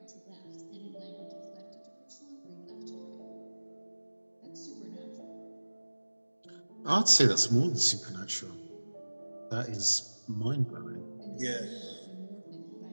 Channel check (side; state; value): both; inverted; correlation -1.00